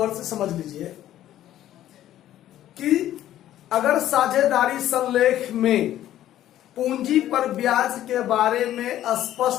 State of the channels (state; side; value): quieter; right; 12.7 dB